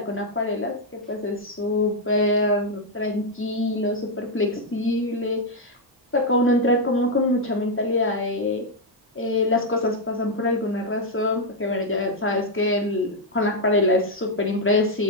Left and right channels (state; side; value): normal; both; correlation 0.00